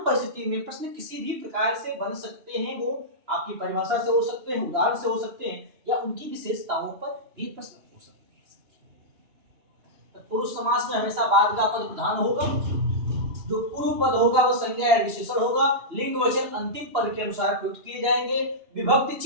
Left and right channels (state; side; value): late; left; 2.9 ms